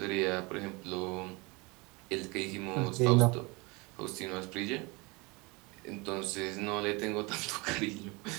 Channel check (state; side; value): quieter; left; 26.8 dB